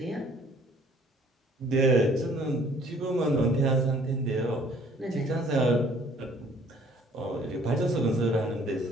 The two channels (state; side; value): normal; both; correlation 0.58